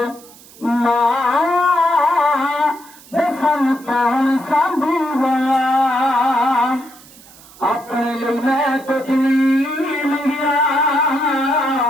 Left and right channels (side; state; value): right; noise; hiss, 22 dB below the sound